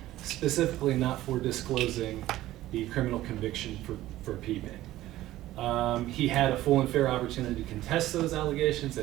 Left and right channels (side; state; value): left; quieter; 15.3 dB